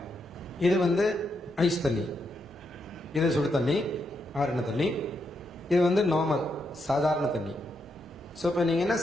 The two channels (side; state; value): both; normal; correlation 0.81